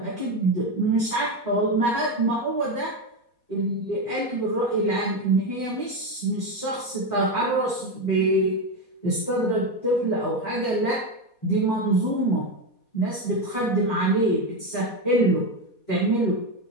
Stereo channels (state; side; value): late; right; 4.2 ms